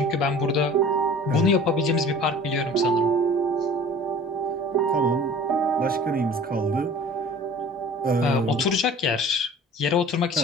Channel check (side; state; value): both; normal; correlation 0.44